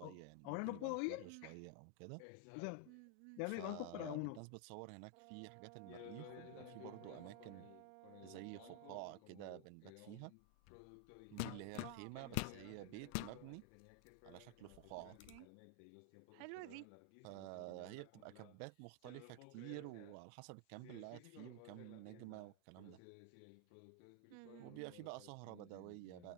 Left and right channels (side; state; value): both; different; correlation 0.00